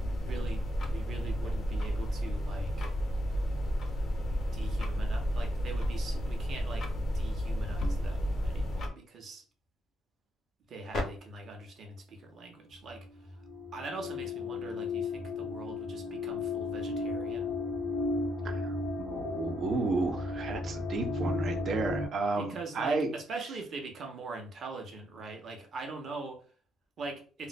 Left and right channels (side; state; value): both; normal; correlation 0.78